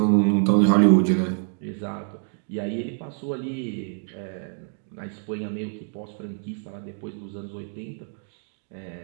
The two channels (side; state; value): left; silent; digital silence